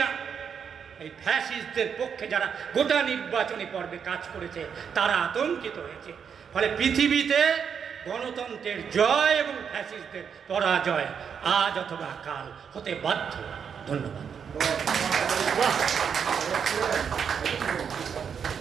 এই ফ্যাসিস্টদের পক্ষে, যারা গোটা নির্বাচনী পর্বে কাজ করেছে, তারা আতঙ্কিত হয়েছে। ফলে পৃথিবীতে গণতন্ত্রের জয় এবং ফ্যাসিস্টদের পরাজয় আজ অথবা কাল হতে বাধ্য। ধন্যবাদ।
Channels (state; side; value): quieter; left; 7.1 dB